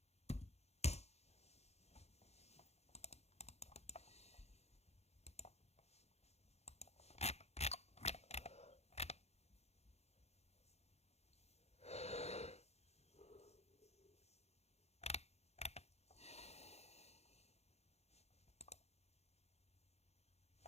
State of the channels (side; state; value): right; late; 0.31 ms